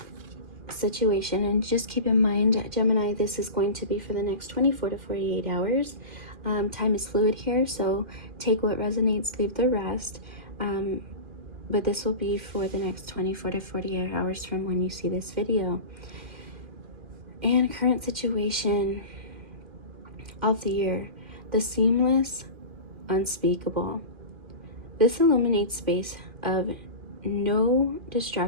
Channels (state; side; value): late; left; 2.4 ms